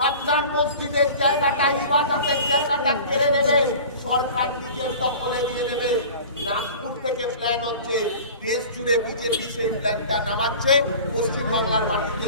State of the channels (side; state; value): both; inverted; correlation -0.40